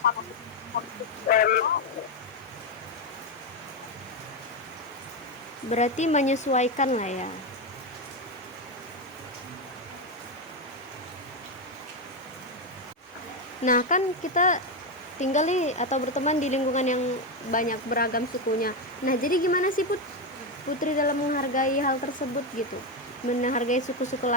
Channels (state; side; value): normal; both; correlation 0.09